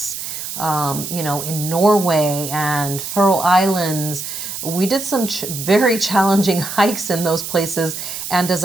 in Norway and Faroe Islands. We did some very challenging hikes in those places. And as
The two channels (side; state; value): right; noise; hiss, 7 dB below the sound